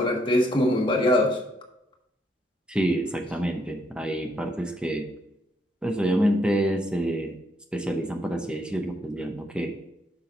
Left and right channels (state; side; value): normal; both; correlation 0.73